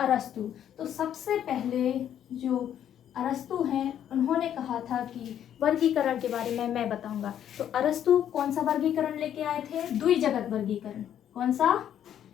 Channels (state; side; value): quieter; right; 10.1 dB